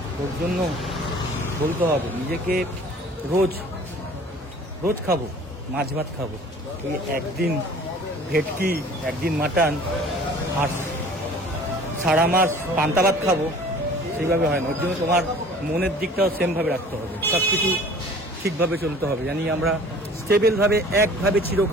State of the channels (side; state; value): both; normal; correlation 0.47